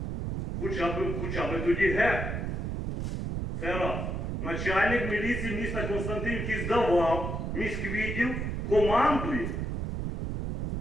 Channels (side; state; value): right; noise; rumble, 3 dB below the sound